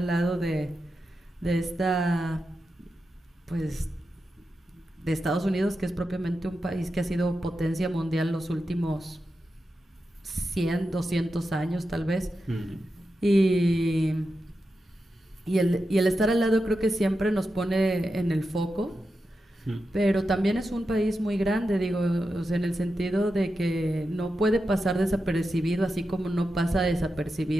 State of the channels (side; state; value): both; normal; correlation 0.89